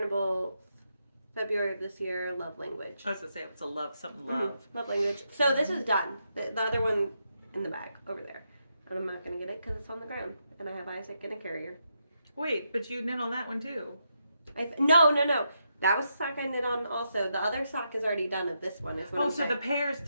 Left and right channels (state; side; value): inverted; both; correlation -0.82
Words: February of this year, Love Language. I was going to say it was a love, something love. Love Language. So this is done. The other one in the bag over there. And I'm not going to get it because it's on the ground. And I have Isaac in a carrier. Wait, but you knit on that one too. No. That was the sock I knit on also. The other sock is already done of this one. Is what Oh, I'm so saying. the pair's